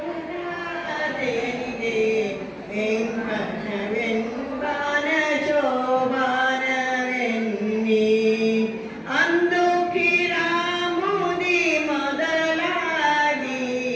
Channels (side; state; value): both; identical; correlation 1.00